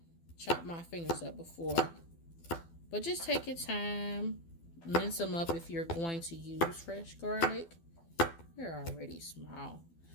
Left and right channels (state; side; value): late; right; 12 ms